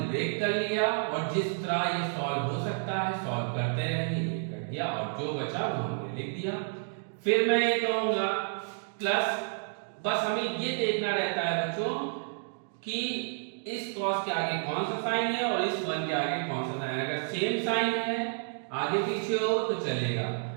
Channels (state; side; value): silent; left; digital silence